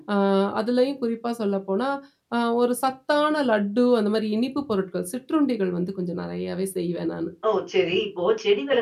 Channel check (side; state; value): both; identical; correlation 1.00